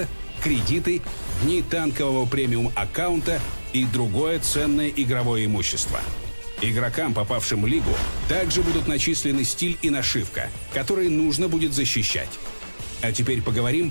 кредиты, дни танкового премиум аккаунта и другое ценное игровое имущество. Игрокам, попавшим в лигу, также будут начислены стиль и нашивка, которые нужно будет защищать. А теперь поговорим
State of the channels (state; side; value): inverted; both; correlation -1.00